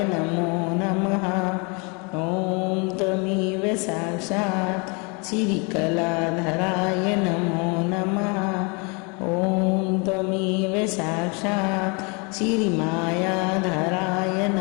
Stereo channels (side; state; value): right; quieter; 31.8 dB